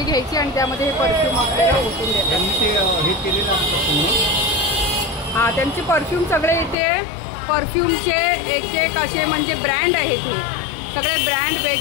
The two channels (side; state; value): right; drops out; at 6.8 s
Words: घ्यायची आणि त्यामध्ये हे परफ्यूम आपल्याला ओतून देतात. हे केलेलं असतं. हां, त्यांचे परफ्यूम सगळे इथे परफ्यूमचे एक एक असे म्हणजे ब्रँड आहेत. हे सगळे ब्रँड